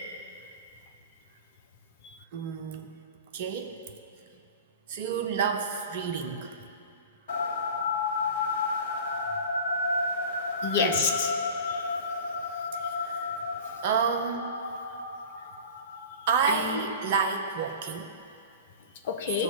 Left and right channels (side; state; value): both; inverted; correlation -0.36